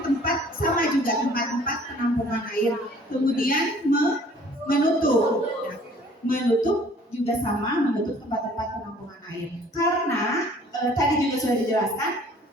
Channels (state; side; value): normal; both; correlation 0.54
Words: sama juga tempat-tempat penampungan air. Kemudian menutup. Menutup juga sama menutup tempat-tempat penampungan air. Karena tadi juga sudah dijelaskan